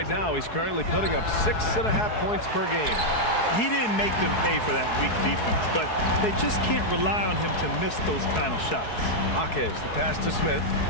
now he's currently putting up 6.5 points per game. He didn't make them pay for that weak defense, but they just can't rely on him to miss those kind of shots. Jaquez, the pass to Smith.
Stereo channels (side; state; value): right; late; 4.7 ms